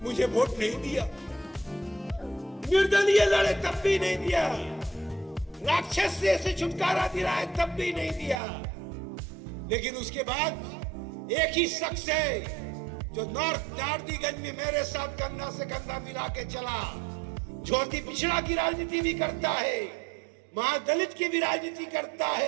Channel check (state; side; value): drops out; left; at 8.3 s